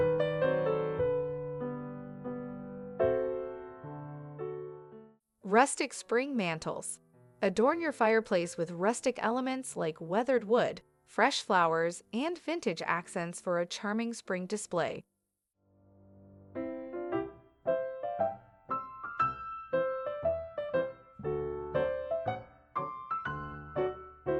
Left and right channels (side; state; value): both; identical; correlation 1.00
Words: Rustic spring mantles. Adorn your fireplace with rustic elements like weathered wood, fresh flowers, and vintage accents for a charming spring display.